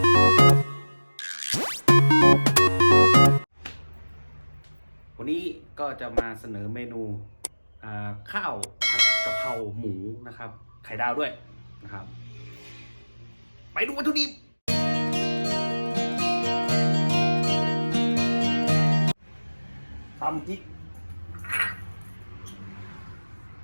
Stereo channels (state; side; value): inverted; both; correlation -1.00